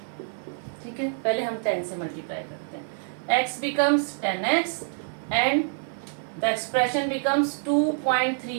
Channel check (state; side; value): silent; left; digital silence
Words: ठीक है, पहले हम 10 से मल्टीप्लाई करते हैं. x becomes 10x and the expression becomes